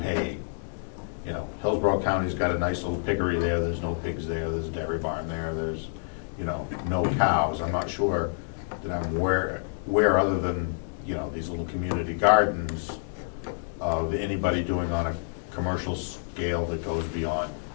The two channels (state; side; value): silent; right; digital silence